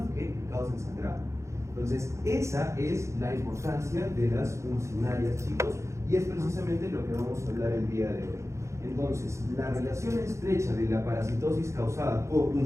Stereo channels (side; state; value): left; late; 0.14 ms